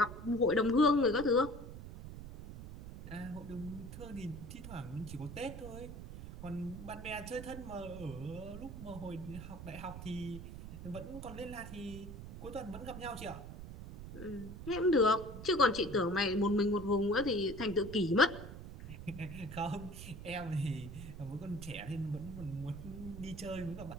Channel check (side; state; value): right; noise; rumble, 11 dB below the sound